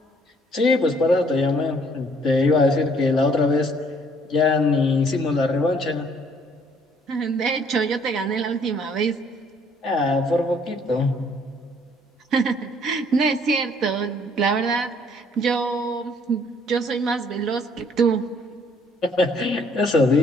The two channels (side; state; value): both; normal; correlation 0.62